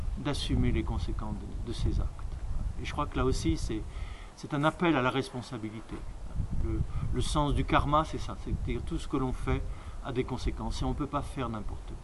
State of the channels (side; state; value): both; identical; correlation 1.00